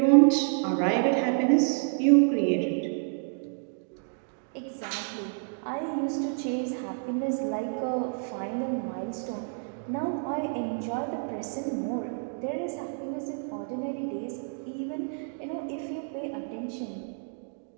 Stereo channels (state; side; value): silent; left; 58 dB below the other